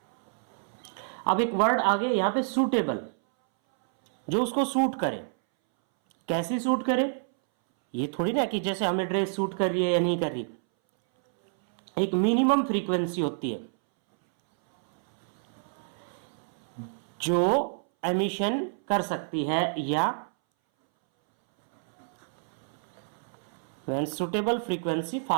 अब एक वर्ड आ गया यहां पे, सुटेबल। जो उसको सूट करे। कैसी सूट करे, ये थोड़ी ना कि जैसे हमें ड्रेस सूट कर रही है या नहीं कर रही, एक मिनिमम फ्रीक्वेंसी होती है जो एमिशन कर सकती है, या when suitable frequency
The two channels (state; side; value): silent; left; 59 dB below the other